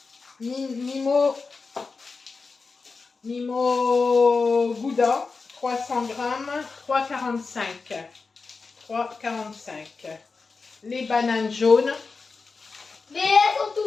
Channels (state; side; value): quieter; right; 4.4 dB